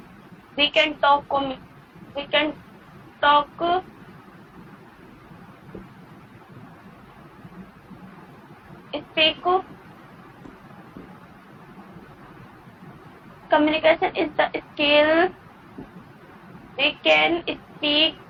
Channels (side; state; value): both; identical; correlation 1.00